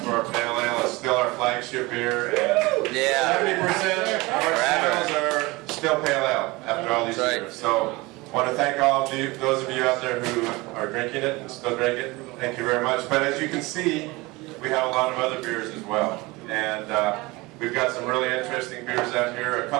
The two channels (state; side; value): quieter; left; 22.8 dB